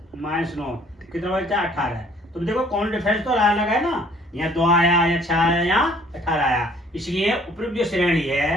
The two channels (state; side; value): normal; both; correlation 0.58